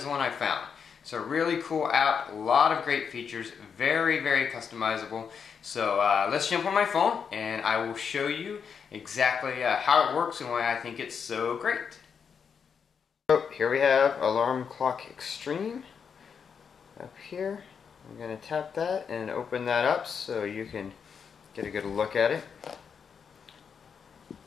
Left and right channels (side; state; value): right; quieter; 6.6 dB